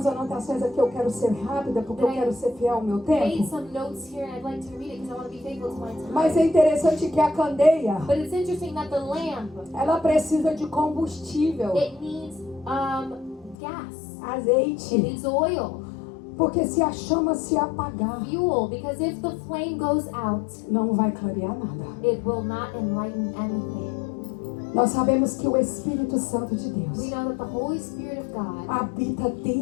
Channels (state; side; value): drops out; right; at 13.6 s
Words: anotações aqui. Eu quero ser rápida porque eu quero ser fiel ao meu I made tempo. some notes here and I'd like to read it because I want to be faithful to my time. Mas é interessante que a candeia, But it's interesting that the lamp, ela precisa de combustível, it needs gas. It azeite. needs oil, Porque se a chama se apagar, fuel, because if the flame goes out, não vai clarear nada. it will not enlighten anything. Nós sabemos que o Espírito Santo de We Deus know that the Holy Spirit of God habita